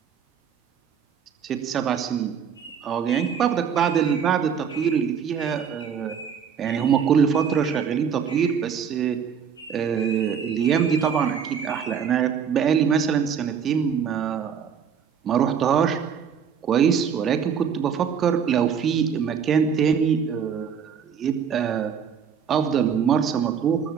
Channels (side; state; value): left; quieter; 7.4 dB